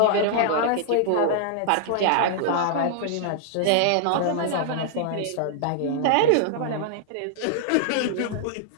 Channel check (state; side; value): different; both; correlation -0.01